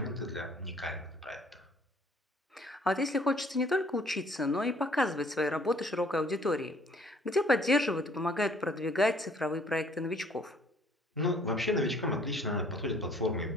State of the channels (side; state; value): both; normal; correlation 0.59